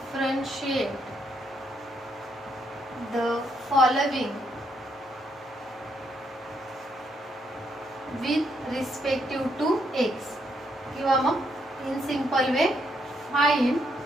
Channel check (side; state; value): both; normal; correlation 0.75